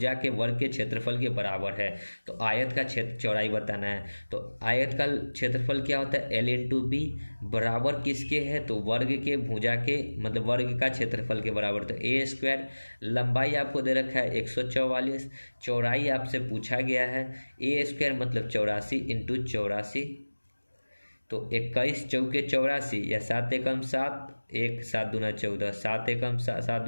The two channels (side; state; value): both; inverted; correlation -1.00